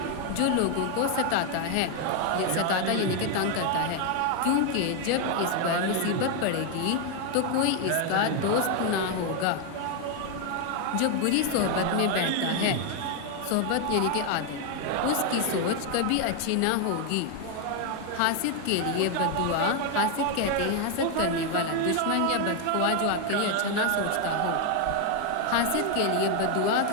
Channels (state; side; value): different; both; correlation 0.01